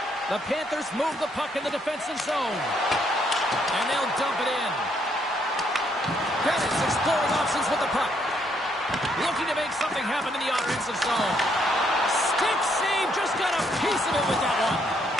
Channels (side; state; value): both; normal; correlation 0.72